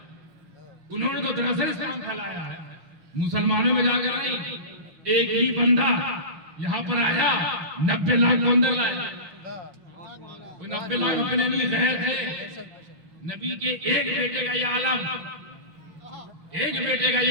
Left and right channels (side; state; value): left; late; 5.9 ms